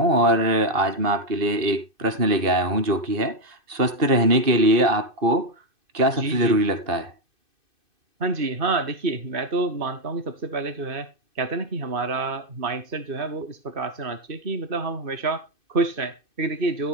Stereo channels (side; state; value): left; late; 2.6 ms